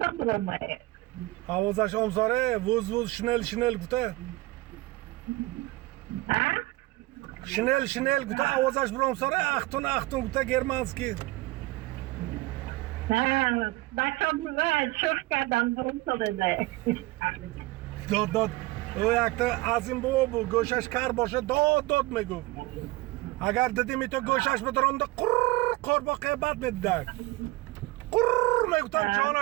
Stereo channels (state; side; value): quieter; left; 20.4 dB